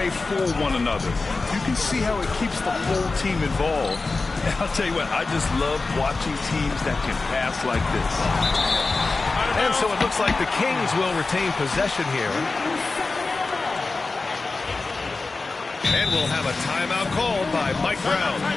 for one another. You can see how it keeps the whole team involved. And I'll tell you what, I just love watching teams that can pass like this. And so it looks like the Kings will retain possession here. And we'll have a timeout called by Mike Brown.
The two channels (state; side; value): quieter; right; 3.7 dB